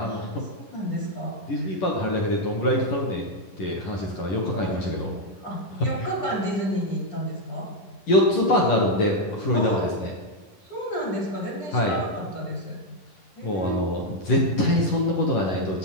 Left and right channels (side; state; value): right; late; 11 ms